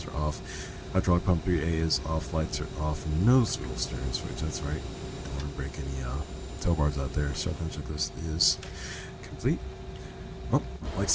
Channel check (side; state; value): both; identical; correlation 1.00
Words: are off. Hydraulic pump 3A is off. Lights are off. Nose wheel steering switch. That's right. Don't want to break any tow bars out there. Shotgun checklist is complete. Well, like I